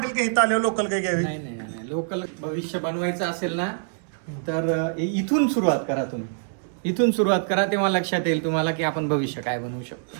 की इथं आल्यावर लोकल काय घ्यावी? नाही नाही नाही, लोकल भविष्य बनवायचं असेल ना तर इथून सुरुवात करा. तुम्ही इथून सुरुवात करा, तेव्हा लक्षात येईल तुम्हाला की आपण भविष्य काय बनवू शकतो.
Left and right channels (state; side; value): silent; left; 60 dB below the other